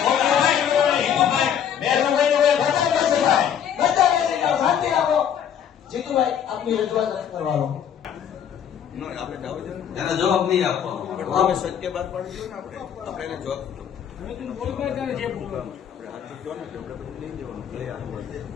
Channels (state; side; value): quieter; right; 8.9 dB